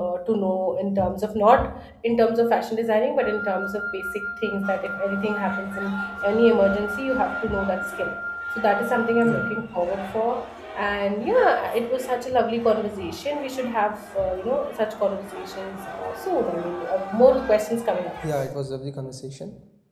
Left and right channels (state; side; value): identical; both; correlation 1.00